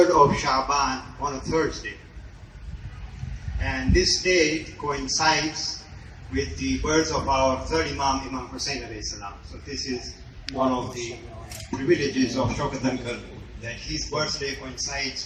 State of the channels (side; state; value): both; identical; correlation 1.00